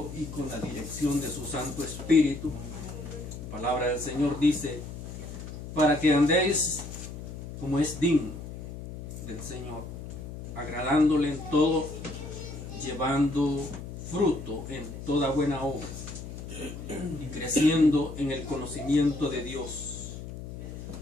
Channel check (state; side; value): noise; left; hum, 10 dB below the sound